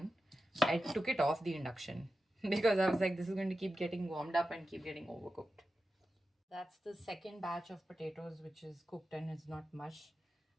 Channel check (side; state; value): both; normal; correlation 0.91